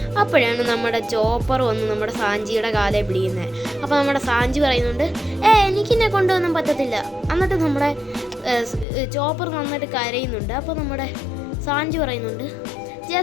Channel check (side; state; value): right; drops out; at 8.8 s